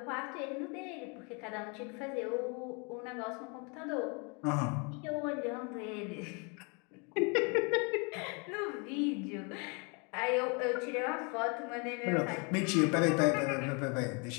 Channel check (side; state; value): right; quieter; 33.2 dB